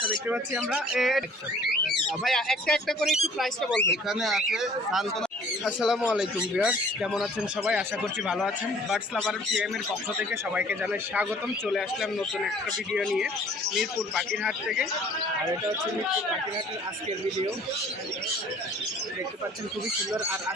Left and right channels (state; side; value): normal; both; correlation 0.53